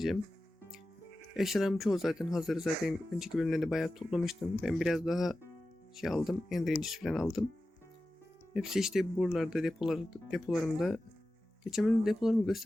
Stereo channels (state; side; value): normal; both; correlation 0.94